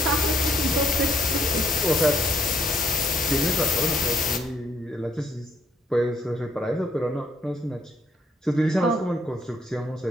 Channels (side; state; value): both; normal; correlation 0.70